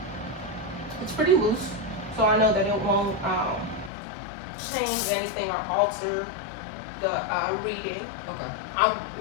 It's pretty loose, so I know that it won't change anything or alter the reading. Okay. I'll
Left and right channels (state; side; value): drops out; right; at 3.9 s